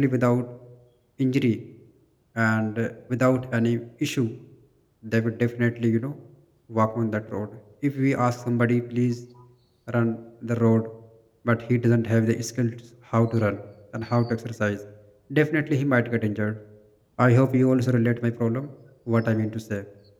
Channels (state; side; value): identical; both; correlation 1.00